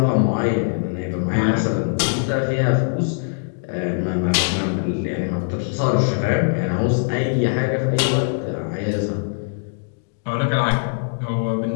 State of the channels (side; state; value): right; silent; digital silence